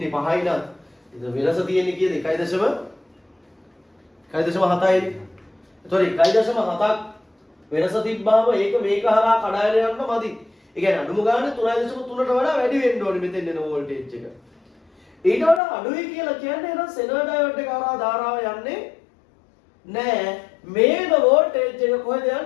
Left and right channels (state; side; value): drops out; right; at 15.6 s